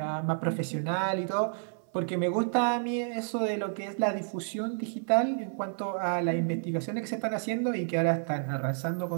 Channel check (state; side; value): silent; left; 58 dB below the other